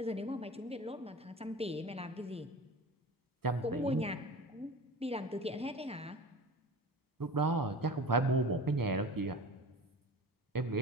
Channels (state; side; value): normal; both; correlation 0.35